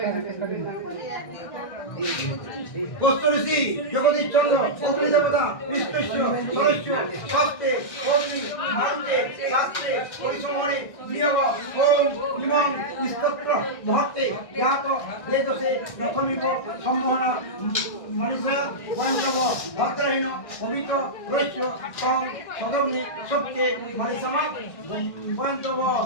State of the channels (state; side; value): late; right; 1.6 ms